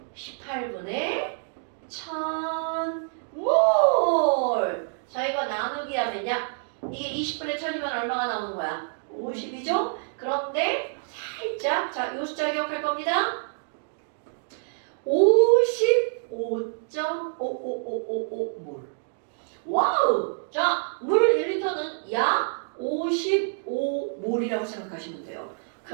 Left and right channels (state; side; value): silent; left; digital silence